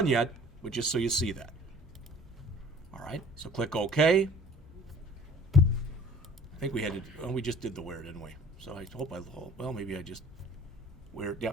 yet, but just so you see that. All right, so click OK. I think we had to, we just did the where, didn't we? So I hope well, maybe I just, where,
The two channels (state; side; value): normal; both; correlation 0.49